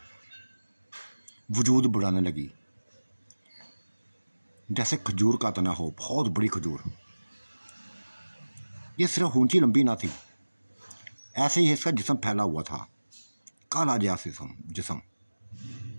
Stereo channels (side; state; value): both; inverted; correlation -1.00